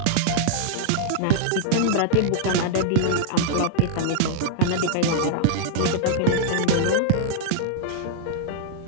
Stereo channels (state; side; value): different; both; correlation -0.01